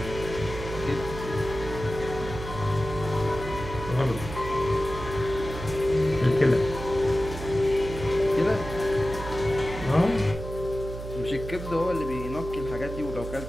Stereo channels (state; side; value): noise; right; hum, 9 dB below the sound